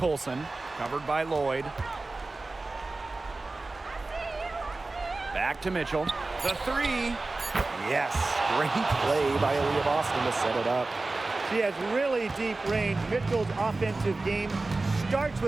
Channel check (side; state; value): left; quieter; 3.3 dB